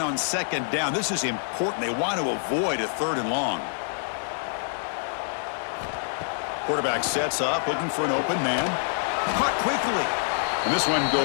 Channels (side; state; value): right; silent; digital silence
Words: on 2nd down, this is important. They want to avoid a 3rd and long. Quarterback sets up, looking for an open man. Caught quickly. And this one